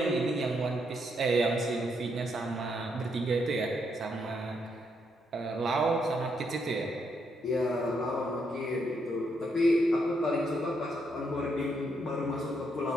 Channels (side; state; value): both; normal; correlation 0.77